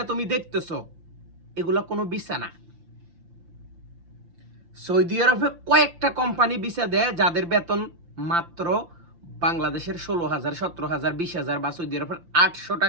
তুমি দেখতেছো এগুলা কোনো ভিসা না। সৌদি আরবে কয়েকটা কোম্পানি ভিসা দেয় যাদের বেতন মাত্র বাংলাদেশের 16,000, 17,000, 20,000 বা সৌদি আরবের 800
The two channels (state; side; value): late; left; 5.8 ms